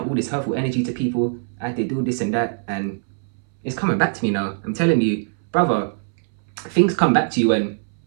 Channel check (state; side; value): silent; left; 64 dB below the other